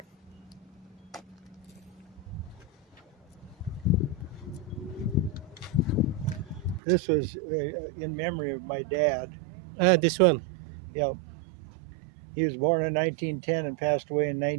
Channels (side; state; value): left; drops out; at 6.8 s